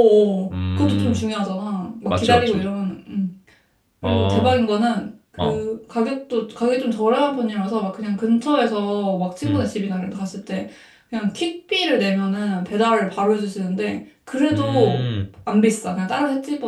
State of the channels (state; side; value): identical; both; correlation 1.00